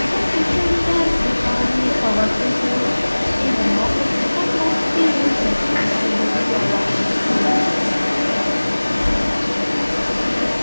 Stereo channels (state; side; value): inverted; both; correlation -1.00